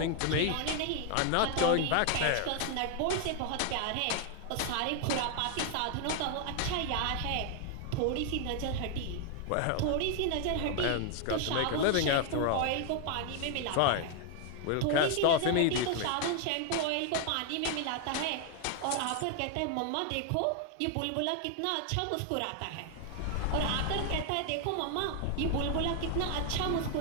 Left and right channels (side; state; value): both; different; correlation 0.00